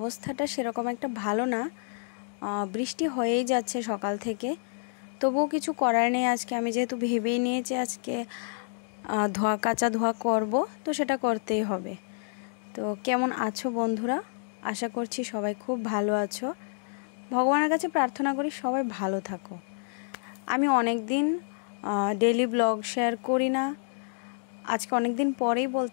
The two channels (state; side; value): silent; right; digital silence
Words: সেরকম একটা ভালো না। বৃষ্টি হয়েই যাচ্ছে সকাল থেকে, তবুও কিছু করার নেই। আজকে আমি যেহেতু ভেবেই নিয়েছি আজকে কাঁচা ধোয়া করব, তো সেটা করতেই হবে। তো কেমন আছো বন্ধুরা? আশা করছি সবাই খুব ভালো আছো। ভগবানের কাছে প্রার্থনা করি সবাই ভালো থাকো। আমি অনেক দিন ডেইলি ব্লগ শেয়ার করি না, আজকে অনেক দিন পরেই